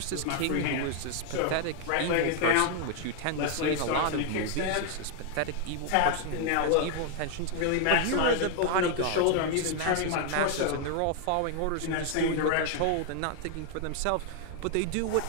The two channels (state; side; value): different; both; correlation 0.00